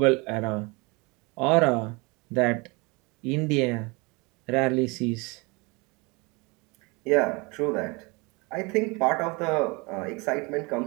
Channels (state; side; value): quieter; left; 27.3 dB